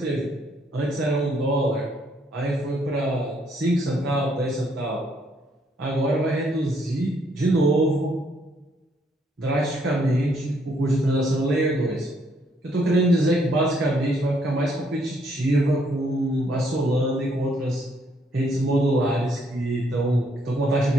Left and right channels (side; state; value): both; normal; correlation 0.70